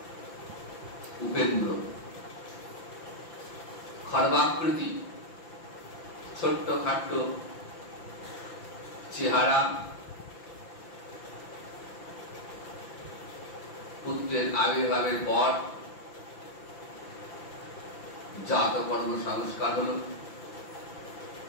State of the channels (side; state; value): right; late; 5.9 ms